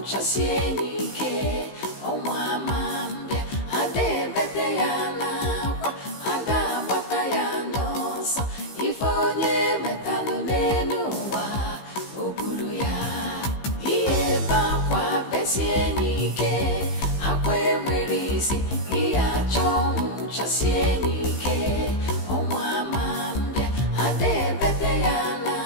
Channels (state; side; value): late; right; 15 ms